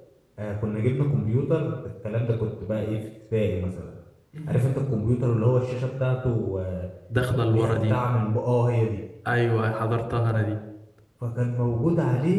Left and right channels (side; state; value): both; identical; correlation 1.00